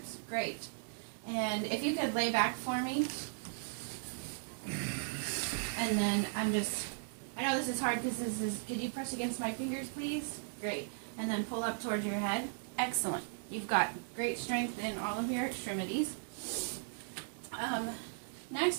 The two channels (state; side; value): silent; left; digital silence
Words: Great. And if you could lay back for me. And then I know this is hard because could you press against my fingers, please? Great. And then pull up towards your head. Excellent. You've got great strength in all of your extremities. Next,